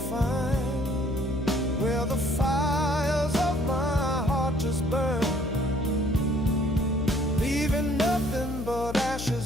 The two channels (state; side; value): noise; left; hum, 7 dB below the sound